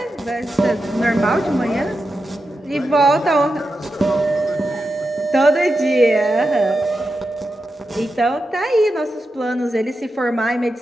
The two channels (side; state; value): both; normal; correlation 0.89